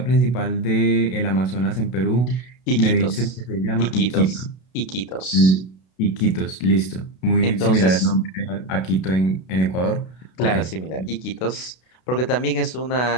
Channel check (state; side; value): late; right; 32 ms